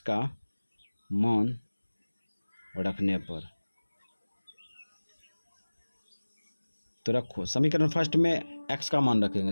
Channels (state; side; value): inverted; both; correlation -1.00